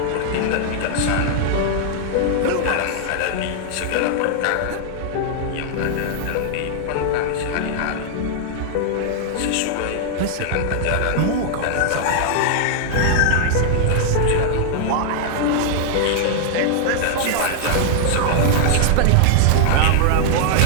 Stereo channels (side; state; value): both; different; correlation -0.01